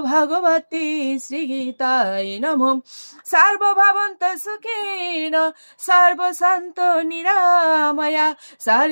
ভগবতে শ্রীগীতায় নমঃ। সর্বভবন্ত সুখেন সর্বসন্ত নিরাময়া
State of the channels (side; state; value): both; inverted; correlation -1.00